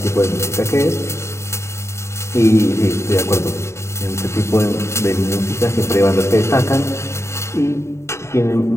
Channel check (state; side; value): late; right; 0.13 ms